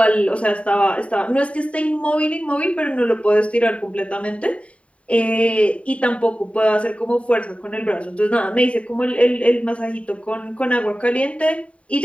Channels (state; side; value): late; right; 0.064 ms